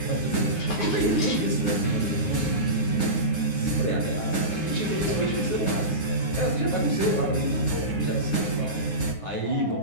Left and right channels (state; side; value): late; right; 9.6 ms